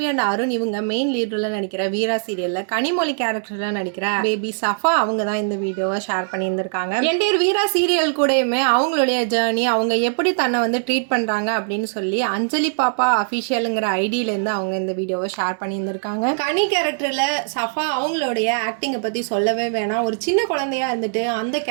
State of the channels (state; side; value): silent; left; digital silence